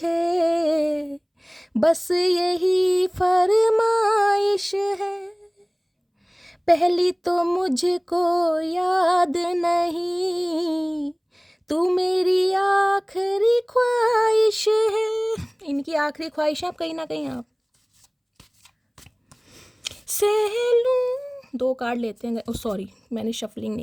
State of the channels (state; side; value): identical; both; correlation 1.00